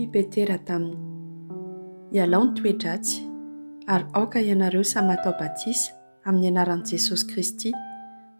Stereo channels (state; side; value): inverted; both; correlation -1.00